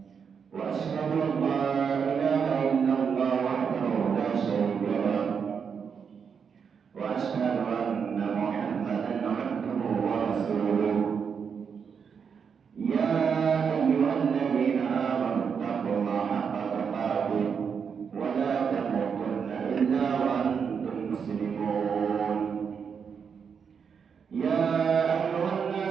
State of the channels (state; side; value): quieter; left; 6.6 dB